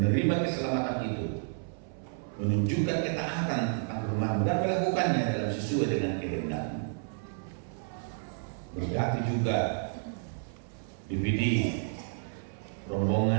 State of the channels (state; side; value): silent; left; 56 dB below the other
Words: keselamatan itu, menunjukkan ketaatan tentang rumah dan melakukannya dalam sesuai dengan kehendak-Mu. Berkati juga DPD